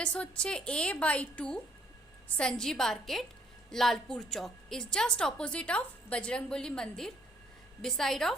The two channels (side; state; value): both; normal; correlation 0.65